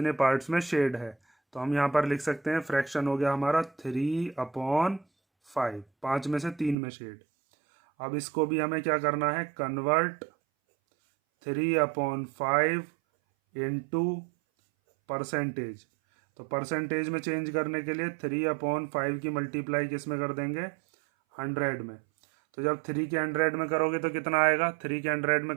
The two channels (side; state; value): left; drops out; at 6.8 s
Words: पार्ट्स में शेड है। तो हम यहाँ पर लिख सकते हैं फ्रैक्शन हो गया हमारा 3/5, 5 में से 3 में शेड। अब इसको भी हमें क्या करना है, कन्वर्ट 3/5 इंटू परसेंटेज। तो परसेंटेज में चेंज करने के लिए 3/5 की मल्टीप्लाई किस में कर देंगे 100 में। तो जब 3 के 100 में करोगे तो कितना आएगा, 3 के 100 में